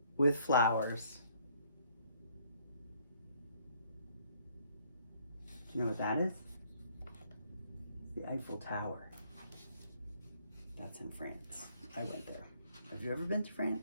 with flowers. Do you know what that is? The Eiffel Tower. That's in France. I went there. I Have you ever been to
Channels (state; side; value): inverted; both; correlation -0.64